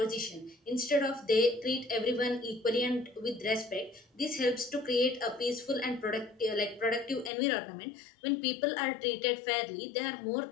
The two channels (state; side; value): drops out; right; at 7.3 s